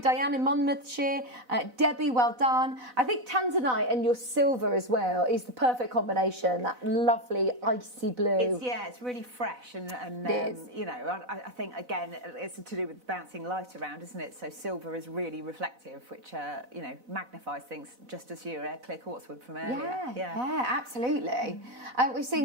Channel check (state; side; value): late; left; 4.0 ms